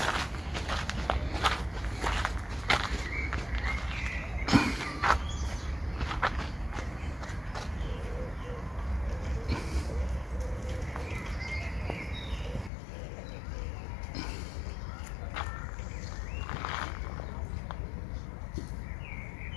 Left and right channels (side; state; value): right; drops out; at 12.7 s